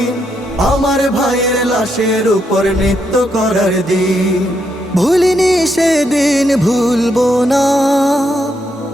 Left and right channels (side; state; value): both; normal; correlation 0.79